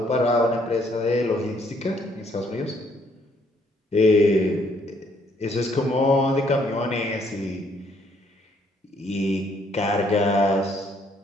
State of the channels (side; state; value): both; normal; correlation 0.68